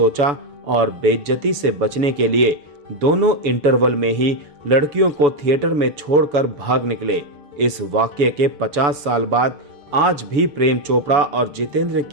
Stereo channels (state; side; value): late; left; 7.0 ms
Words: और बेइज्जती से बचने के लिए दोनों इंटरवल में ही लड़कियों को थिएटर में छोड़कर भाग निकले। इस वाक्य के 50 साल बाद आज भी प्रेम चोपड़ा और जितेंद्र